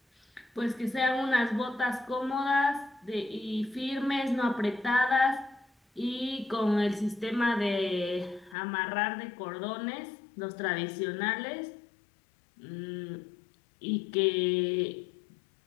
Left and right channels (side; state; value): right; drops out; at 8.6 s